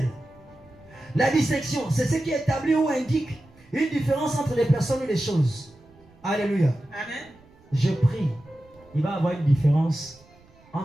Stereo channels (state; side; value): noise; right; rumble, 28 dB below the sound